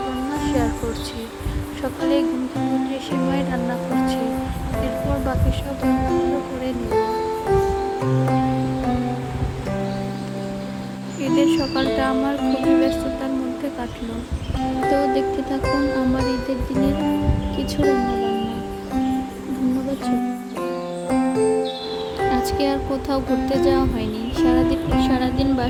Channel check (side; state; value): both; identical; correlation 1.00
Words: শেয়ার করছি। সকালে ঘুম থেকে উঠে সেমাই রান্না করছি, এরপর বাকি সব রান্নাগুলো করে নিব। ঈদের সকালটা আমার খুবই ব্যস্ততার মধ্যে কাটলো। তো দেখতে থাকুন আমার ঈদের দিনের কিছু রান্নাবান্না। ধন্যবাদ। আজকে আর কোথাও ঘুরতে যাওয়া হয়নি। সারাদিন